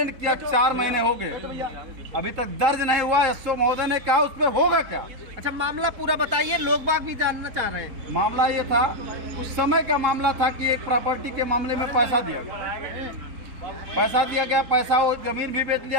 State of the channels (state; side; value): late; left; 4.2 ms